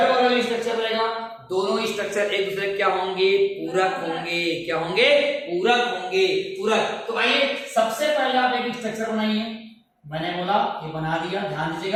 वाला भी स्ट्रक्चर रहेगा, दोनों स्ट्रक्चर एक दूसरे क्या होंगे, पूरक होंगे। क्या होंगे, पूरक होंगे, पूरक। तो आइए सबसे पहले आप एक स्ट्रक्चर बनाइए। मैंने बोला ये बना दिया, ध्यान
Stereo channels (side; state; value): both; identical; correlation 1.00